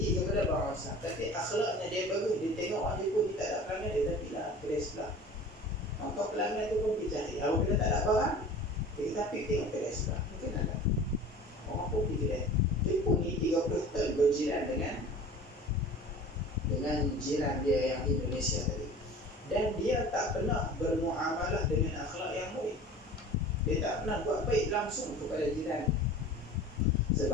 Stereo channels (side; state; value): both; normal; correlation 0.41